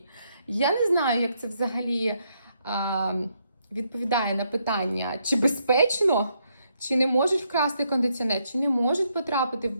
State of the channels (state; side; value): inverted; both; correlation -0.76